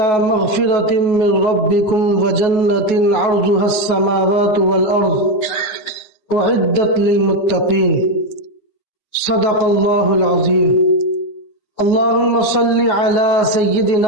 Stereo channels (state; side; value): late; right; 9.4 ms